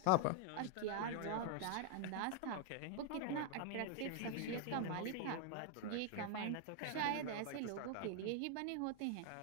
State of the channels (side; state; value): both; different; correlation 0.00